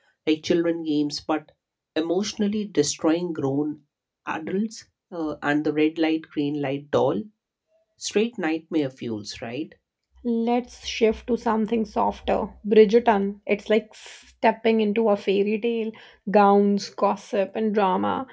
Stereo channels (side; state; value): both; identical; correlation 1.00